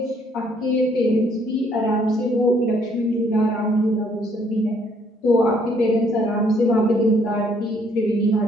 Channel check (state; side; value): normal; both; correlation 0.66